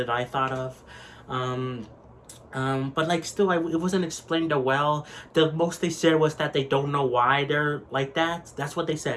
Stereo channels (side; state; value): both; identical; correlation 1.00